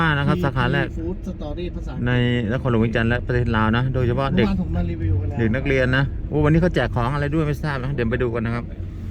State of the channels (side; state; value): both; identical; correlation 1.00